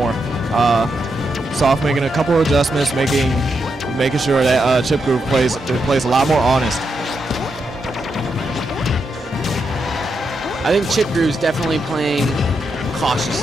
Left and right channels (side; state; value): both; normal; correlation 0.83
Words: Soft making a couple of adjustments, making sure that ChipGroove plays a lot more honest. I think ChipGroove's definitely playing